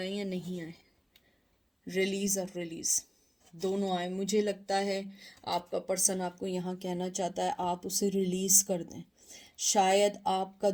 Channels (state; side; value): identical; both; correlation 1.00